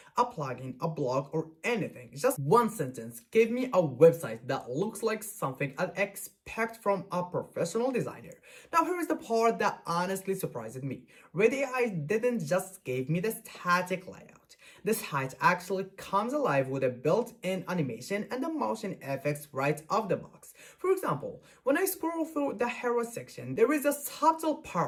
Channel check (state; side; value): identical; both; correlation 1.00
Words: A plugin, a blog, or anything. Just one sentence gave me a website that looks like something I'd expect from a professional designer. Now here is the part that honestly surprised me. Ready AI didn't just give me the static layout. The site actually comes alive with a built-in animation and the motion effects right off the box. For example, when I scroll through the hero section, there is a subtle